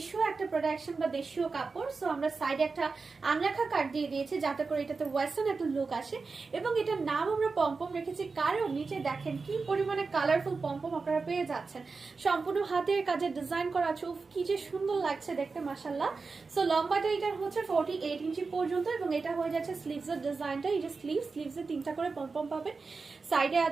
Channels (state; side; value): quieter; left; 4.4 dB